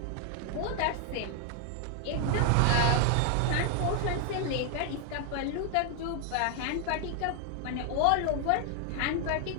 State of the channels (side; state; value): both; different; correlation 0.00